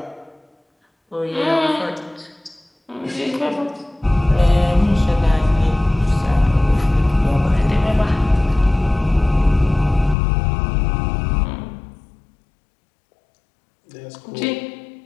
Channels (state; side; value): drops out; right; at 10.2 s